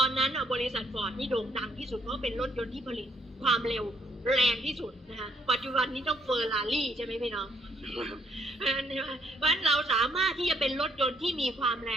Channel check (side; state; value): both; normal; correlation 0.69